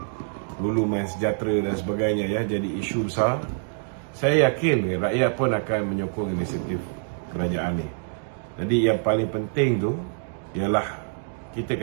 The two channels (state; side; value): silent; left; digital silence